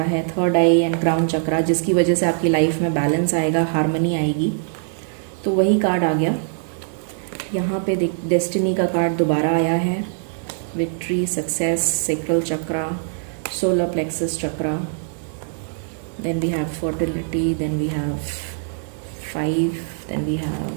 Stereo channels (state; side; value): silent; left; digital silence